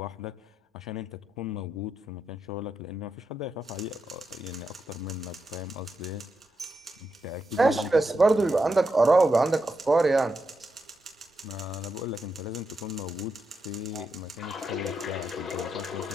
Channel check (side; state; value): both; normal; correlation 0.85